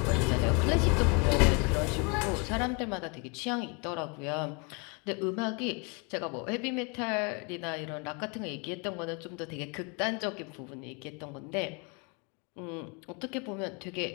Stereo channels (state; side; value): quieter; right; 31.2 dB